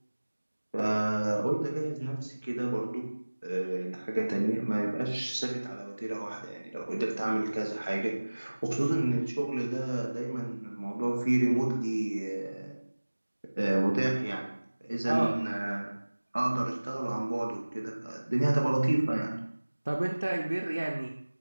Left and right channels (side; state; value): both; inverted; correlation -1.00